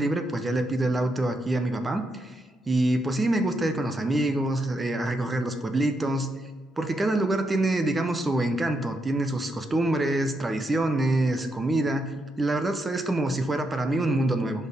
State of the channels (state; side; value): normal; both; correlation 0.81